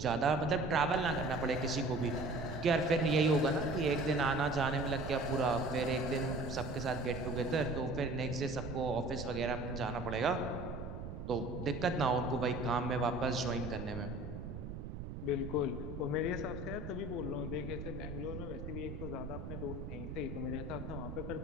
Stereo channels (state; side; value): noise; right; rumble, 7 dB below the sound